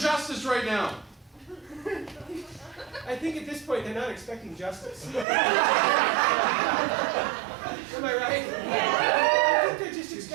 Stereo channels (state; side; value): drops out; left; at 5.2 s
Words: justice right now. I think at this point they're not expecting justice. Am I right? I think they're just